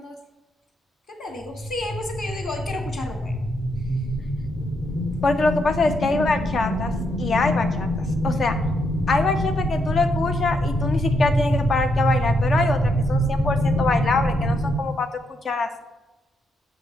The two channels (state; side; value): normal; both; correlation 0.78